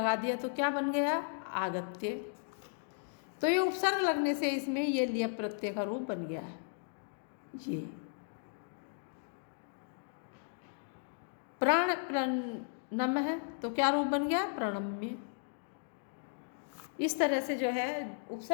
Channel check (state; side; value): silent; right; digital silence